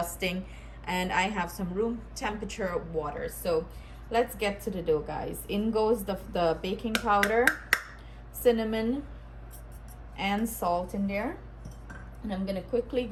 and I have some room temperature water. So let's get to the dough, guys. In goes the baking powder, cinnamon, and salt in there. And I'm gonna quickly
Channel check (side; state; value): both; identical; correlation 1.00